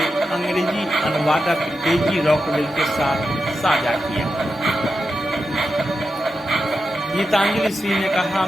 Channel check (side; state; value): both; normal; correlation 0.88